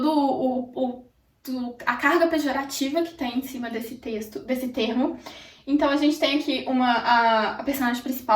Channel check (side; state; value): both; identical; correlation 1.00